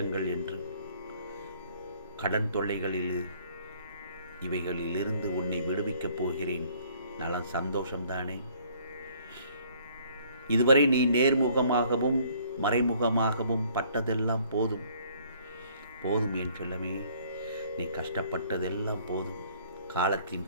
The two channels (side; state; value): both; inverted; correlation -0.59